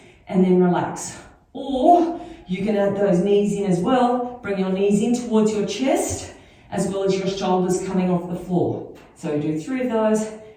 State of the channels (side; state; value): both; identical; correlation 1.00